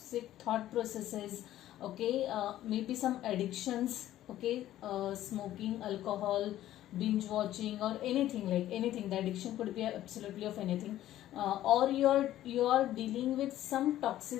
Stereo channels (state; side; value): quieter; right; 13.4 dB